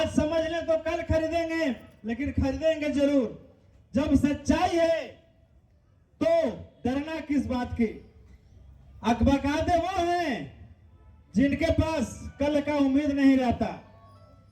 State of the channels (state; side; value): identical; both; correlation 1.00